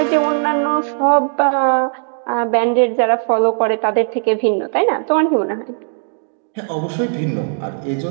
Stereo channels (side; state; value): left; silent; digital silence